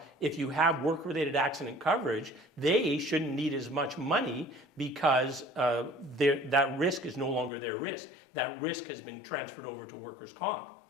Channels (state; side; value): drops out; right; at 7.5 s